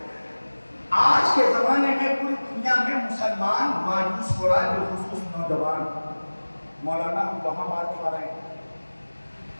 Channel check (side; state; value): both; inverted; correlation -1.00